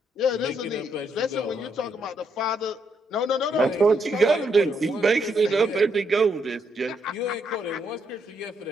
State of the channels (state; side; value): normal; both; correlation 0.76